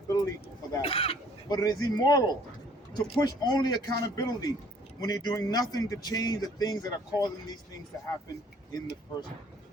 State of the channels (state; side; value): normal; both; correlation 0.58